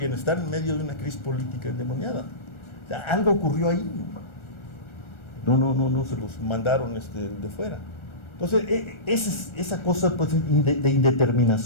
en medio de una crisis política endemoniada. O sea, algo ocurrió ahí, no se los mandaron de fuera. Entonces, esa cosa, pues, de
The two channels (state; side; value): late; right; 1.4 ms